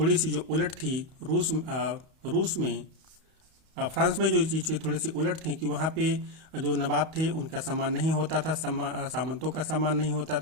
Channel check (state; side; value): late; left; 31 ms